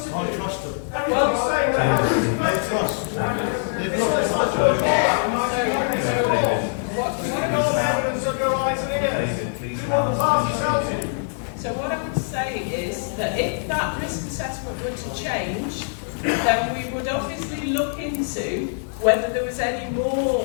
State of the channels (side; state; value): right; silent; digital silence